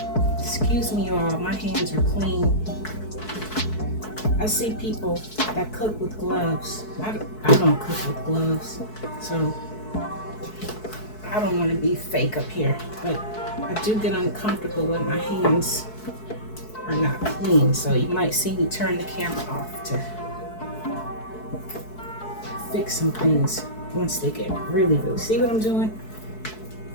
Excuse me, y'all, my hands are clean. I see people that cook with gloves. I don't cook with gloves, so I don't want to be fake up here, but I do get uncomfortable when my hands are not clean, so you might see me turn the camera off to fix some things once they get really, see what I'm doing?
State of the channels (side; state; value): right; late; 4.6 ms